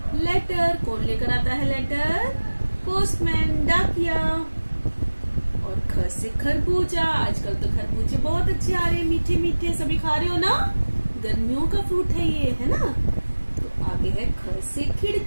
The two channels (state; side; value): inverted; both; correlation -1.00